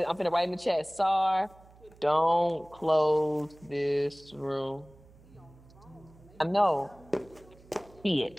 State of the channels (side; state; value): right; noise; hum, 25 dB below the sound